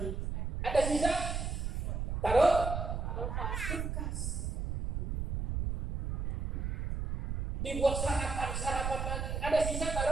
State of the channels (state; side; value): noise; right; rumble, 2 dB below the sound